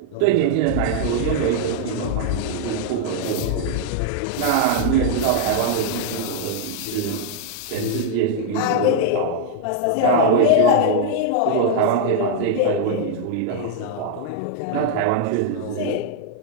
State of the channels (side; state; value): both; different; correlation 0.00